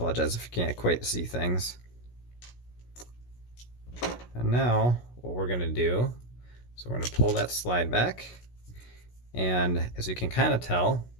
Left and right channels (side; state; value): right; late; 16 ms